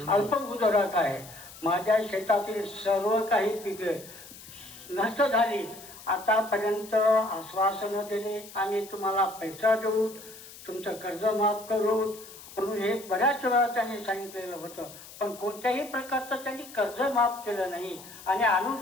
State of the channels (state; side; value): noise; left; hiss, 17 dB below the sound